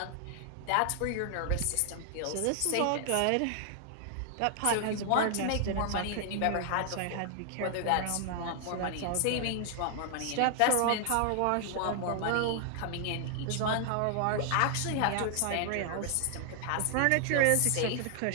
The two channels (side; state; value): both; different; correlation 0.00